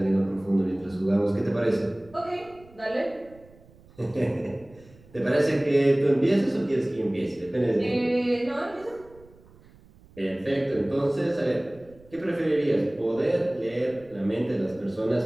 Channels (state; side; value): noise; right; rumble, 25 dB below the sound